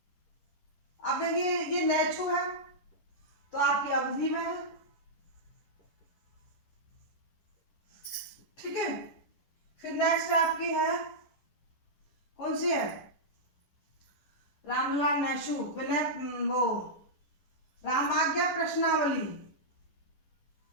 अब देखिए ये नहछू है तो आपकी अवधि में है। ठीक है। फिर नेक्स्ट आपकी है, कौन सी है? रामलला नहछू विनय वो रामाज्ञा प्रश्नावली,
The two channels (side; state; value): right; late; 11 ms